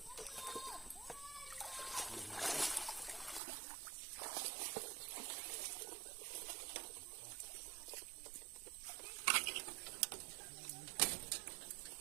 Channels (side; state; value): left; drops out; at 3.4 s